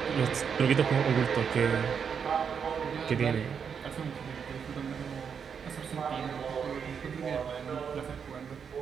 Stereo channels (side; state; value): left; quieter; 6.9 dB